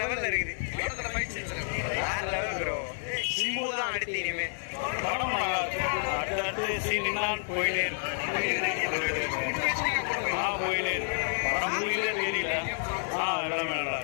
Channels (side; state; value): right; silent; digital silence